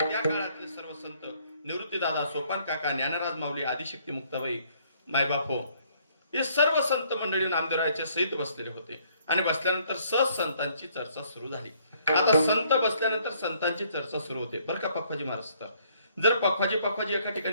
त्या काळातले सर्व संत निवृत्तीदादा, सोपान काका, ज्ञानराज माऊली, आदिशक्ती मुक्ताबाई, मायबापो हे सर्व संत मंडळी नामदेवरायाच्या सहित बसलेले होते. आणि बसल्यानंतर सहज संतांची चर्चा सुरू झाली. आता संत बसल्यानंतर संतांची चर्चा सुरू होते बरं का पखवाजी महाराज. तर जर पखवाजी एका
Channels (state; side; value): inverted; both; correlation -0.65